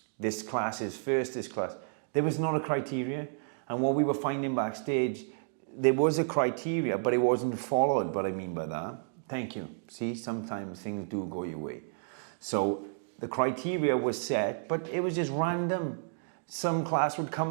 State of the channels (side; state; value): left; silent; digital silence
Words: This class is first, this class. There was not a criteria. And what we were finding backstage, there was a criteria, but it wasn't followed. What I mean by that, thank you. See, sometimes things do go your way. So the criteria was set, but it was just random. Some class would